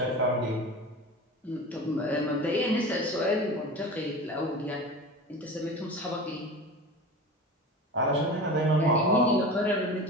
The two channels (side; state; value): both; normal; correlation 0.33